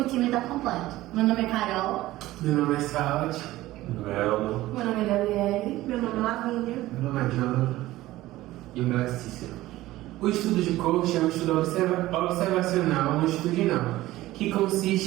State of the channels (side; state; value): left; quieter; 16.6 dB